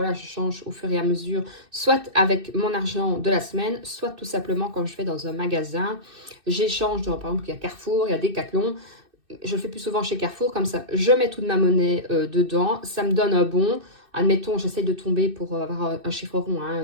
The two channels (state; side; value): late; left; 2.6 ms